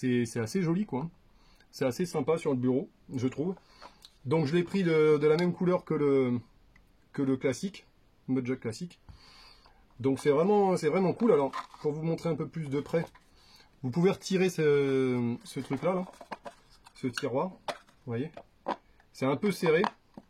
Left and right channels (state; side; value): identical; both; correlation 1.00